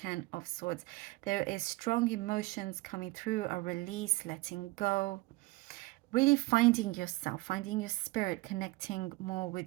of Swords. There is strong emotions coming through, a release, letting go, really finding yourself, finding your spirit, connecting more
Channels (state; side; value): quieter; left; 21.5 dB